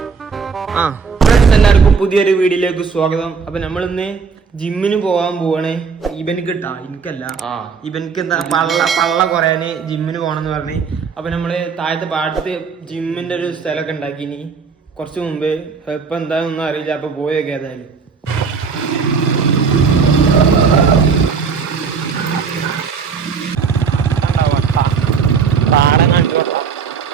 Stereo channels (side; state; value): left; quieter; 5.6 dB